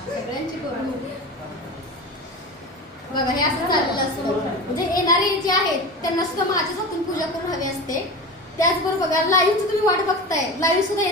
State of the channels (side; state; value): both; normal; correlation 0.29